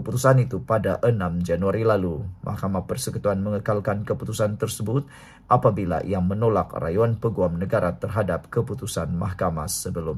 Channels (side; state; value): both; identical; correlation 1.00